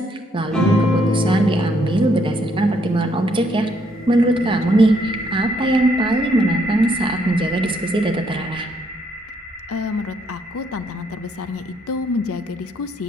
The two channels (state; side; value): normal; both; correlation 0.71